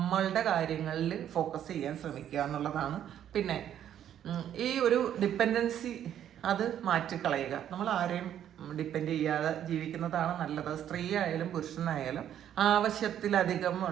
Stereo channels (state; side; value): quieter; left; 10.4 dB